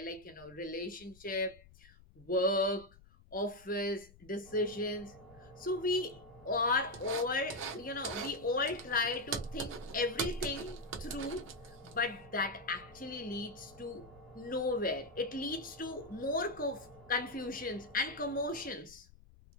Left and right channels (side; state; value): left; noise; rumble, 24 dB below the sound